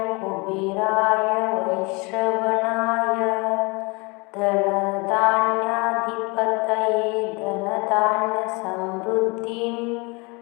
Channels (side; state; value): right; quieter; 28.2 dB